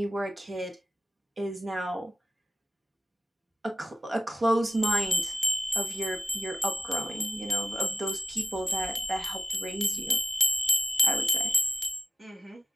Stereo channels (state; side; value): normal; both; correlation 0.87